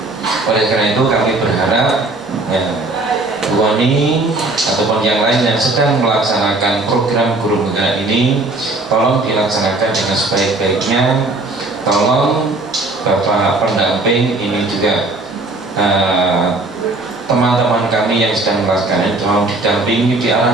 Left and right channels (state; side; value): quieter; left; 3.0 dB